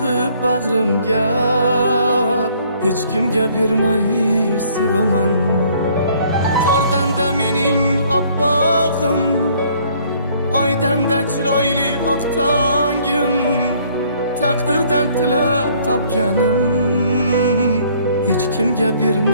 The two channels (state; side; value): inverted; both; correlation -0.61